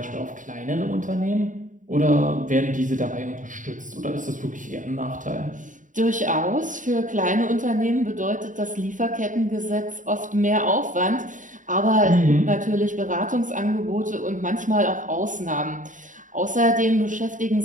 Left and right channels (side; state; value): left; late; 0.37 ms